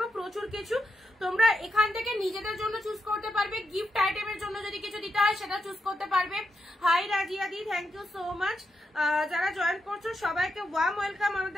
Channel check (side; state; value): both; normal; correlation 0.85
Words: প্রচুর কিছু তোমরা এখান থেকে নিজেদের জন্য চুজ করতে পারবে, গিফট আইটেমের জন্য যদি কিছু দিতে হয় সেটা চুজ করতে পারবে। হাই রাজিয়া দি, থ্যাংক ইউ সো মাচ। যারা জয়েন করছো সবাইকে ওয়ার্ম ওয়েলকাম